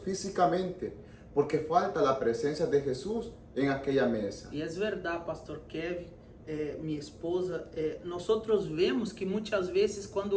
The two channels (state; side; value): identical; both; correlation 1.00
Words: físicamente, porque falta la presencia de Jesús en aquella mesa. E é verdade, pastor Kevin, minha esposa, nós vemos que muitas vezes